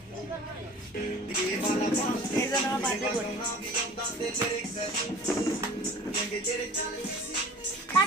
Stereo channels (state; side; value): normal; both; correlation 0.45